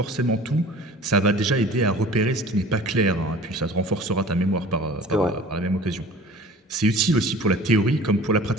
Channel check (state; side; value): normal; both; correlation 0.44